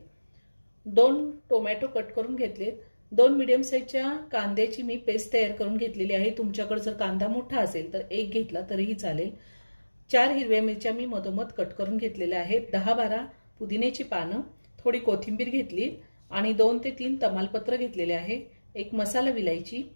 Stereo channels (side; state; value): both; inverted; correlation -1.00